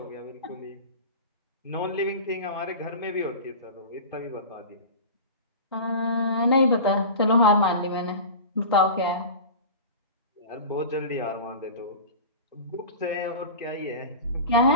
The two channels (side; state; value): both; inverted; correlation -0.32